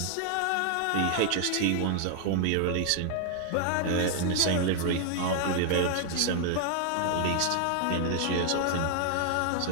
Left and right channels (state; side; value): different; both; correlation 0.00